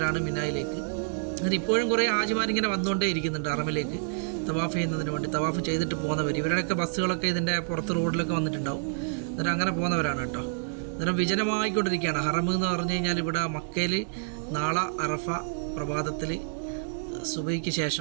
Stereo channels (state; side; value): silent; left; 59 dB below the other